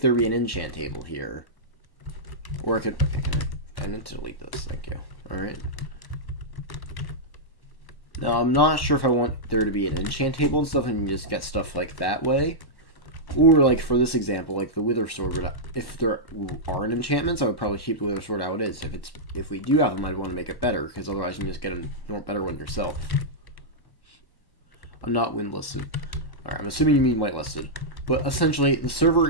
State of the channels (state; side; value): late; right; 1.1 ms